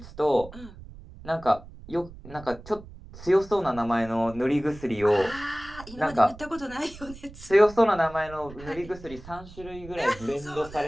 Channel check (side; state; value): right; noise; rumble, 17 dB below the sound